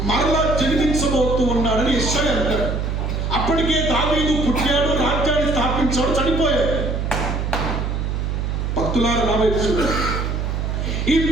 మరలా జన్మించబోతూ ఉన్నాడని యెషయా అంటాడు. అప్పటికే దావీదు పుట్టాడు, రాజ్యాన్ని స్థాపించాడు, చనిపోయాడు. భక్తులారా నా వైపు చూడండి. ఈ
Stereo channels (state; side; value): noise; right; hum, 1 dB below the sound